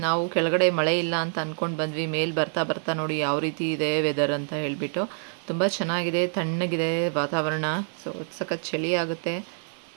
ನಾವು ಕೆಳಗಡೆ ಮಳೆ ಇಲ್ಲ ಅಂತ ಅಂದ್ಕೊಂಡು ಬಂದ್ವಿ. ಮೇಲೆ ಬರ್ತಾ ಬರ್ತಾ ನೋಡಿ ಯಾವ ರೀತಿ ಇದೆ ವೆದರ್ ಅಂತ ಹೇಳಿಬಿಟ್ಟು. ತುಂಬ ಚೆನ್ನಾಗಿದೆ, ತಣ್ಣಗಿದೆ ವಾತಾವರಣ. ಸೊ ಸಖತ್ ಚಳಿ ಆಗುತ್ತೆ.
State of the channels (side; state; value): left; silent; 61 dB below the other